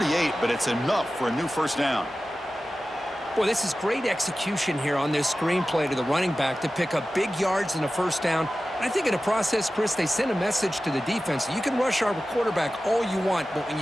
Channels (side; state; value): both; normal; correlation 0.95